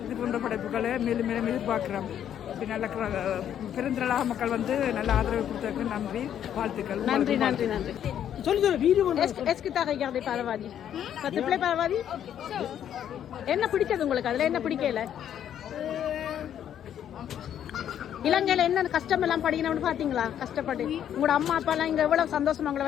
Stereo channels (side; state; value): right; quieter; 9.9 dB